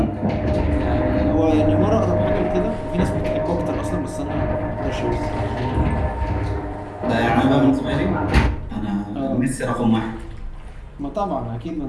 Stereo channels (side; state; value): both; identical; correlation 1.00